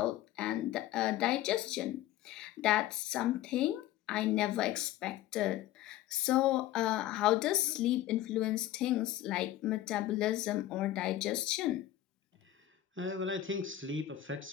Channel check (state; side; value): quieter; right; 13.4 dB